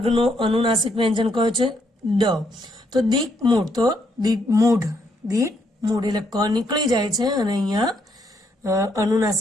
અનુનાસિક વ્યંજન કયો છે? ડ, તો દીક મૂઢ, તો મૂઢ, દીક મૂઢ, એટલે ક નીકળી જાય છે અને અહીંયા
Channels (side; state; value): both; normal; correlation 0.74